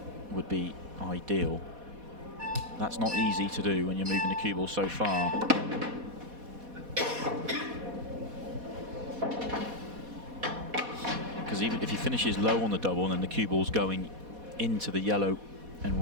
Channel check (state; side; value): late; left; 4.1 ms